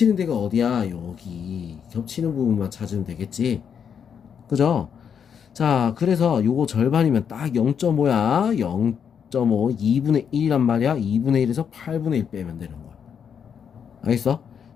데가 어디야? 여기. 겹치는 부분만 찾으면 되겠지. 그죠? 자, 그래서 요거 절반이면 딱 0.5야. 0.5, 2분의 1이란 말이야. 2분의 1에서 8분의 1 빼면 되는 거야. 알겠어?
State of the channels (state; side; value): quieter; right; 7.5 dB